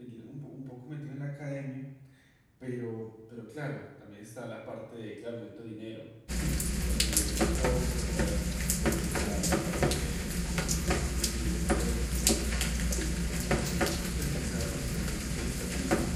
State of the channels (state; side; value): identical; both; correlation 1.00